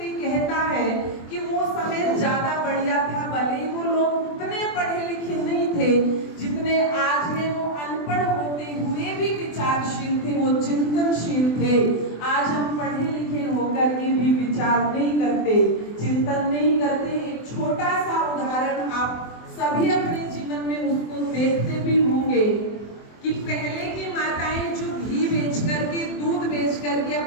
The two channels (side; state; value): right; late; 24 ms